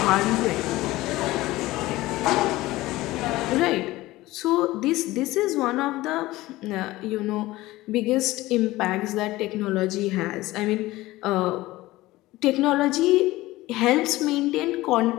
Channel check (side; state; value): right; quieter; 18.2 dB